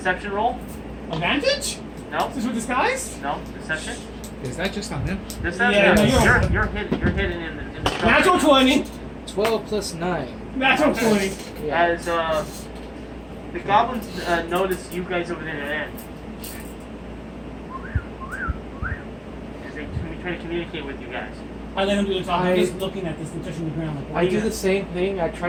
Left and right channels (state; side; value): identical; both; correlation 1.00